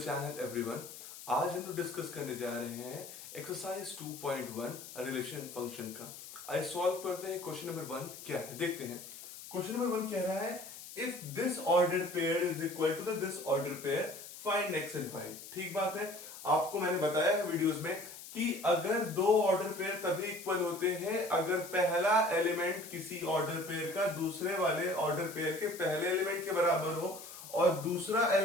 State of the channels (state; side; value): noise; left; hiss, 14 dB below the sound